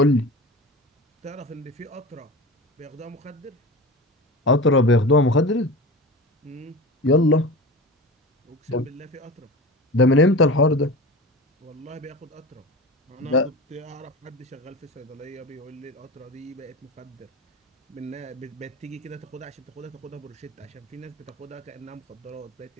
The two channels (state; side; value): normal; both; correlation 0.30